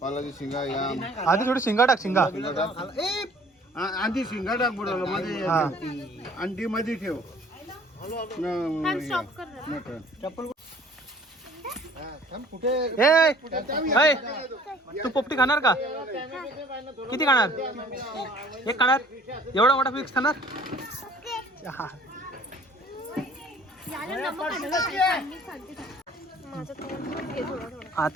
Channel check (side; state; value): both; normal; correlation 0.53